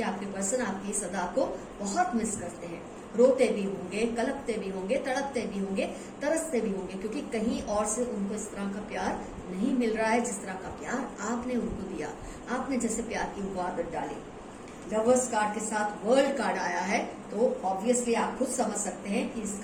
आपके पर्सन आपकी इस अदा को बहुत मिस करते हैं। रोते भी होंगे, कलपते भी होंगे, तड़पते भी होंगे, तरसते भी होंगे, क्योंकि कहीं और से उनको इस तरह का प्यार नहीं मिल रहा है जिस तरह का प्यार आपने उनको दिया। आपने जैसे प्यार की वो आदत डाली। लवर्स कार्ड के साथ वर्ल्ड कार्ड आया है, तो ऑब्वियसली आप खुद समझ सकते हैं कि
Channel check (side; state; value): both; identical; correlation 1.00